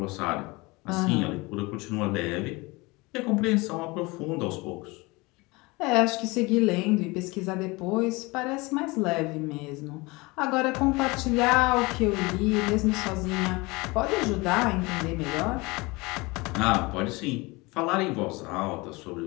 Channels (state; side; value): quieter; right; 24.3 dB